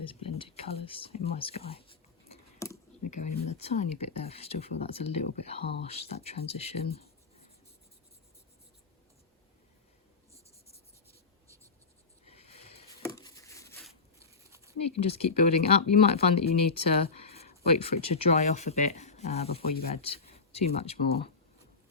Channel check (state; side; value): quieter; right; 4.6 dB